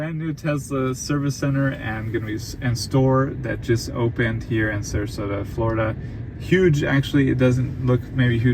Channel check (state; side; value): identical; both; correlation 1.00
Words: new Tesla service center and store that just opened here in Sarasota, Florida. Huge, actually. It doesn't look maybe